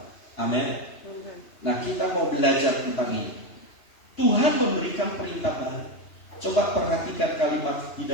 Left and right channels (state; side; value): late; right; 2.9 ms